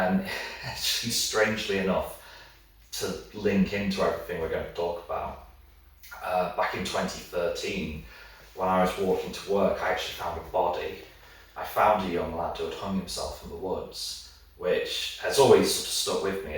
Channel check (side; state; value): both; identical; correlation 1.00